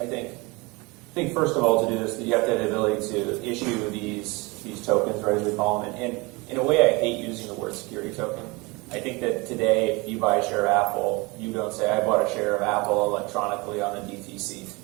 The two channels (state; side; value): quieter; left; 25.7 dB